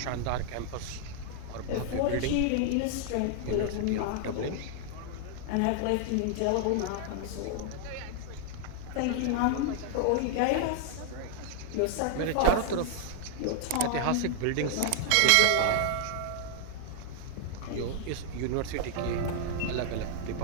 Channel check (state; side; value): different; both; correlation -0.01